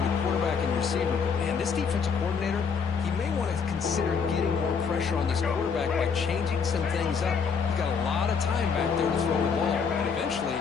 the quarterback and receiver. Man, this defensive coordinator, he may want to consider getting more pressure on this quarterback by changing some things up. You've got a lot of time back there to throw the ball, and eventually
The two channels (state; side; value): quieter; right; 6.0 dB